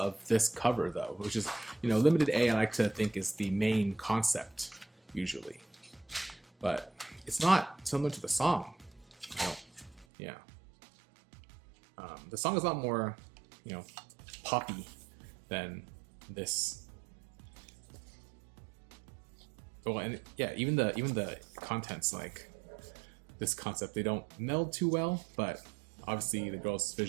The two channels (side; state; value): left; drops out; at 10.1 s